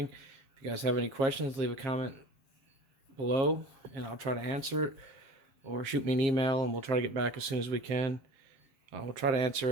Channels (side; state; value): left; late; 7.4 ms